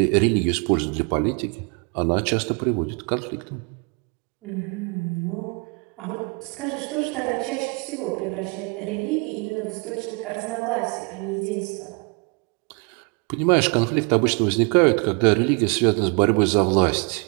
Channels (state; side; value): quieter; left; 33.1 dB